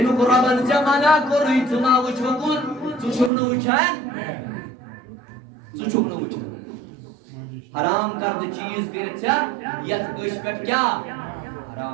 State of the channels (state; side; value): drops out; left; at 3.3 s